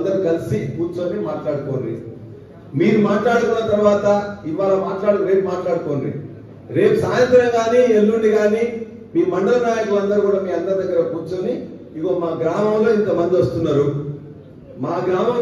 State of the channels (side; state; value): both; identical; correlation 1.00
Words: కలిసి కూర్చొని మాట్లాడుకోండి. మీరు మాట్లాడుకున్న తర్వాత ఇవాళ రేపు మాట్లాడుకోండి. రేపు సాయంత్రం కానీ ఎల్లుండి కానీ మీ మండల నాయకులందరూ కూడా మీ అందరి దగ్గర కూర్చొని, ఇగో మా గ్రామంలో ఇంతమంది వస్తున్నారు, మా గ్రామం